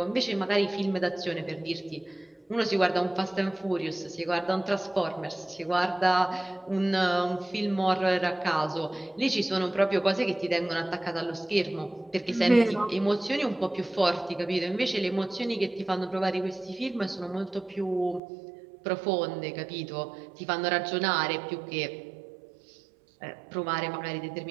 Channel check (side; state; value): left; drops out; at 18.2 s